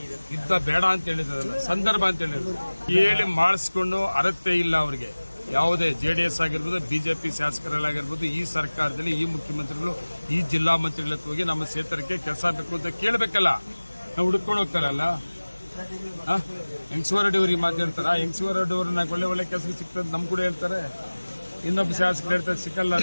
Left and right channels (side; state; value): both; inverted; correlation -1.00